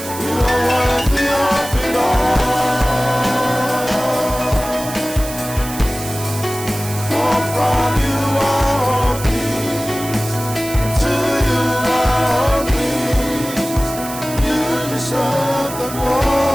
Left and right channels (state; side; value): noise; right; hiss, 11 dB below the sound